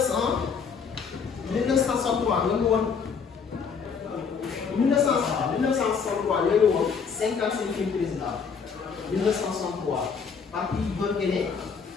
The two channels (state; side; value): quieter; right; 5.9 dB